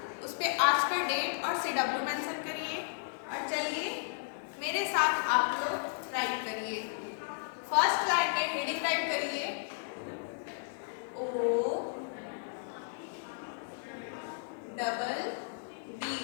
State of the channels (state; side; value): silent; right; digital silence